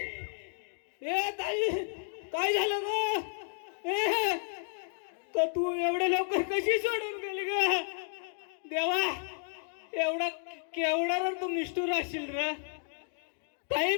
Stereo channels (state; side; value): silent; right; 56 dB below the other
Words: ए ताई, काय झालं ग? ए तर तू एवढे लवकर कशी सोडून गेली ग? देवा, एवढा केवढा रे तू निष्ठुर असशील रे. ताई